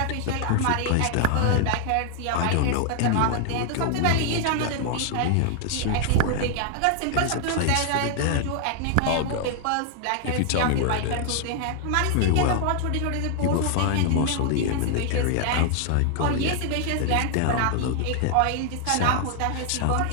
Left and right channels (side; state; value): both; different; correlation 0.00